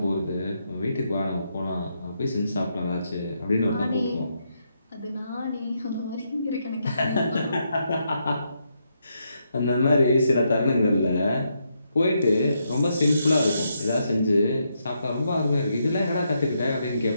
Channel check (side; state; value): both; inverted; correlation -0.80